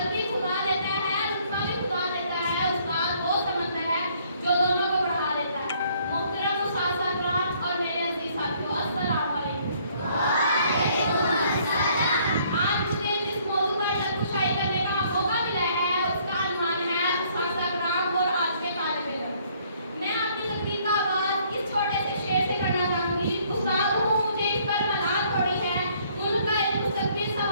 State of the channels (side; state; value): both; inverted; correlation -0.64